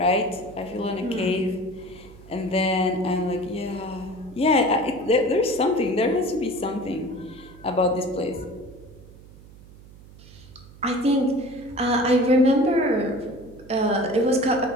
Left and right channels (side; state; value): right; noise; hum, 21 dB below the sound